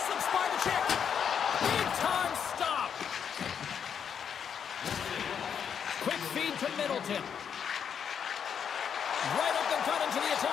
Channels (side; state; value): right; quieter; 7.7 dB